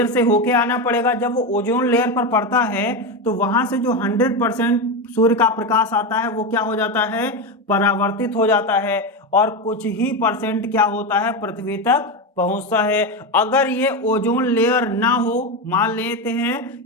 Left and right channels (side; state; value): both; normal; correlation 0.15